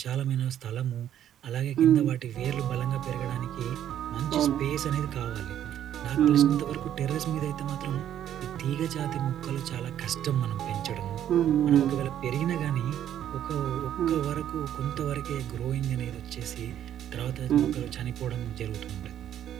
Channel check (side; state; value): left; quieter; 10.7 dB